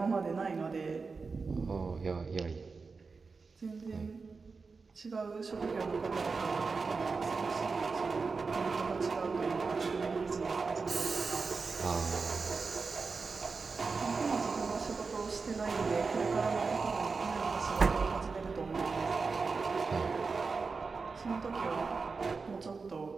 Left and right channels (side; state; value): left; quieter; 4.6 dB